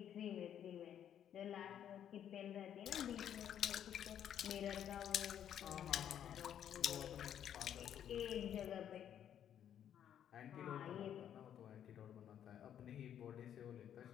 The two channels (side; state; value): right; quieter; 9.8 dB